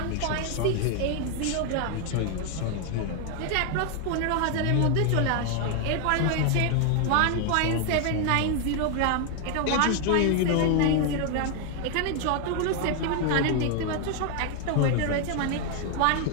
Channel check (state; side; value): different; both; correlation 0.00